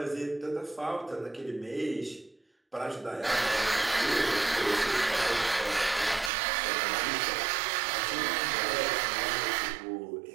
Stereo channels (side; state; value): left; drops out; at 6.3 s